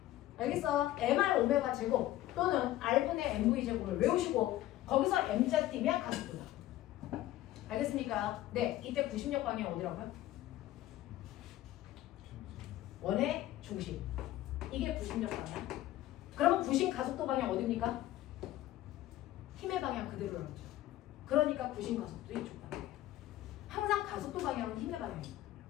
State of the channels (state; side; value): quieter; right; 14.6 dB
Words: 알겠어? mr 오메가 제곱 또는 r분의 mv 제곱을 외우시고 거기서 m자 띄면 가속도다. 알겠습니까? 네, 이때 구심력 방향 어디라고요? 원의 중심. 이게 구심력 방향. 그러면 구심 가속도 방향 어디입니까? 힘의 방향 그대로 나오죠. 그러니까 구심 가속도 이쪽 방향이에요. 항상 가속도 방향은 힘의 방향입니다.